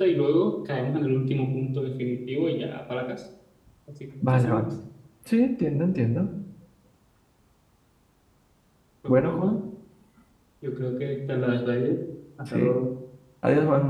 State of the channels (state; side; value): identical; both; correlation 1.00